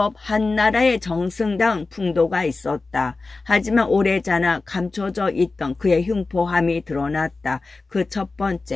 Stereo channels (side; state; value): right; quieter; 3.7 dB